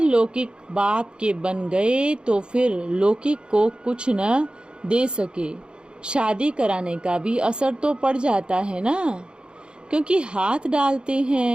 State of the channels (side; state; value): left; late; 0.051 ms